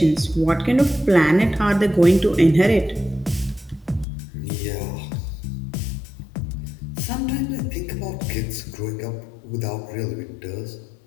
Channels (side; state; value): right; drops out; at 4.0 s